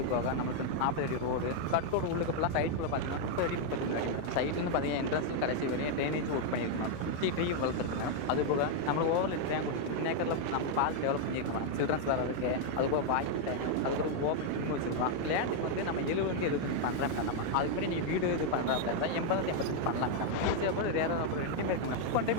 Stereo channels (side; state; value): both; different; correlation 0.00